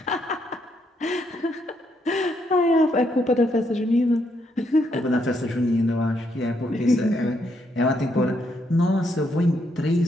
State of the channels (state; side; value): normal; both; correlation 0.76